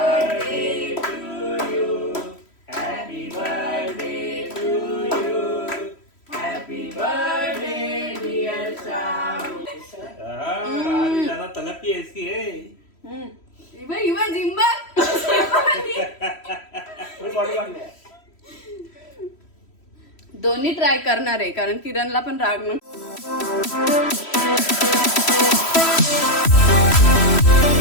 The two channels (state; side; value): late; right; 3.1 ms